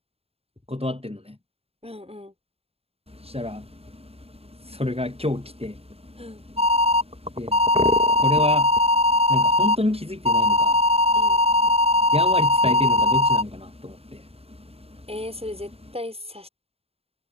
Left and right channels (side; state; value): left; late; 0.29 ms